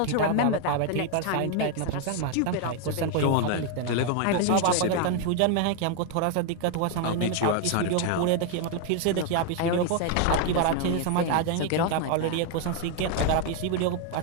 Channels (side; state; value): both; different; correlation 0.00